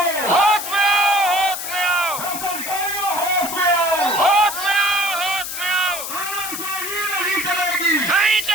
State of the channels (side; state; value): left; noise; hiss, 6 dB below the sound